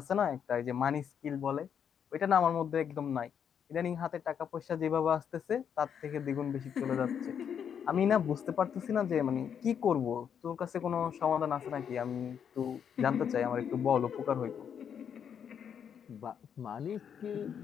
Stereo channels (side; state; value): right; quieter; 8.0 dB